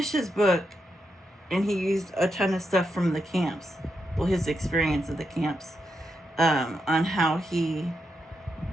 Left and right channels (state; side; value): normal; both; correlation 0.84